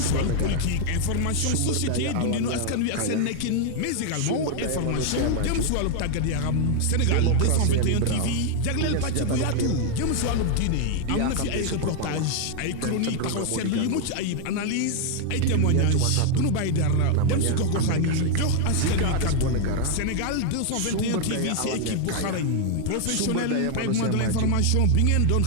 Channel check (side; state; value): both; different; correlation 0.00